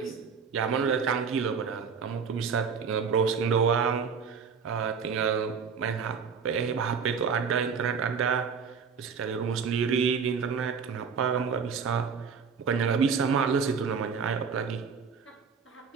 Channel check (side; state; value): left; quieter; 6.0 dB